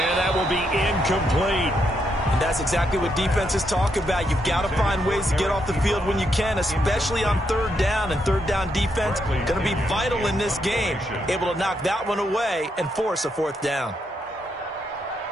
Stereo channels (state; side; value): normal; both; correlation 0.79